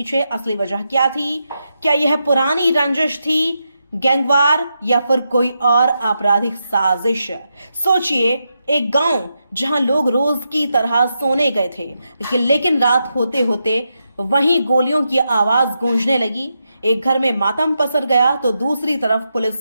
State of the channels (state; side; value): inverted; both; correlation -0.85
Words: असली वजह क्या थी। क्या यह पुरानी रंजिश थी, गैंगवार, या फिर कोई और आपराधिक साजिश। सोचिए, एक गांव जहां लोग रोज की तरह सोने गए थे, लेकिन रात होते होते वहीं गोलियों की आवाज गूंजने लगी। एक घर में मातम पसर गया तो दूसरी तरफ पुलिस